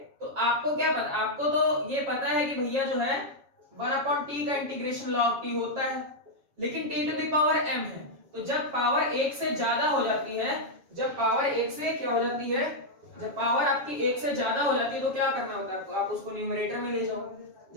तो आपको क्या पता, आपको तो ये पता है कि भैया जो है 1/t का इंटीग्रेशन log t होता है, लेकिन t to the power m है, तो जब पावर 1 से ज्यादा हो जाती है, जब पावर 1 से क्या हो जाती है, जब पावर आपकी 1 से ज्यादा हो जाती है तो क्या करना होता है आपको, आप उसको न्यूमरेटर में ले जाओ,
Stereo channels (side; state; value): left; late; 7.2 ms